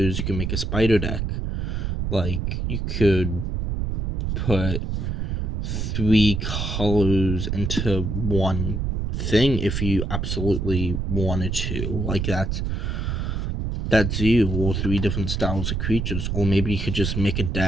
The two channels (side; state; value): right; noise; rumble, 1 dB below the sound